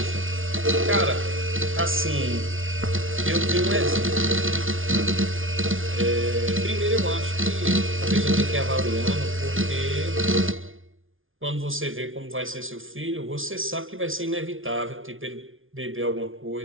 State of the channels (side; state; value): left; late; 0.58 ms